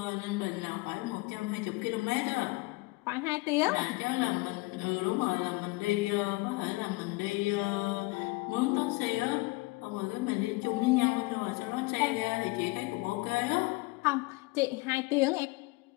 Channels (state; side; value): quieter; right; 24.0 dB